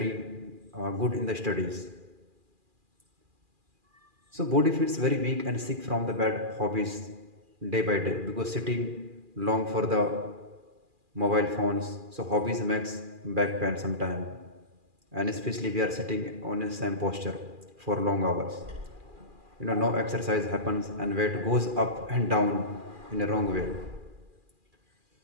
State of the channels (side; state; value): left; late; 2.4 ms